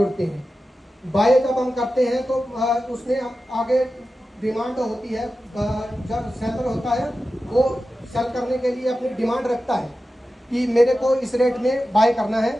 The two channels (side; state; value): both; normal; correlation 0.93